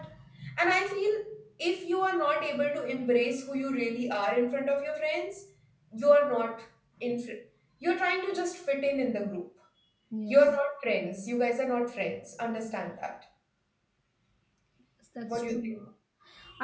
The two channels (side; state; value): both; identical; correlation 1.00